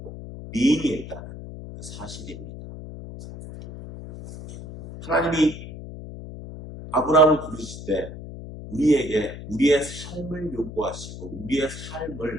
being에 있다는 그 사실입니다. 하나님이 아브라함을 부르실 때 우리에게 우리의 삶을 요구하시고 우리의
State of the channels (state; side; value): noise; left; hum, 12 dB below the sound